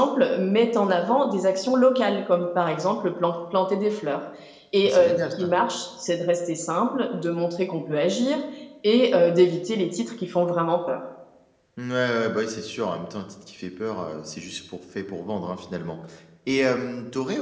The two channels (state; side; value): identical; both; correlation 1.00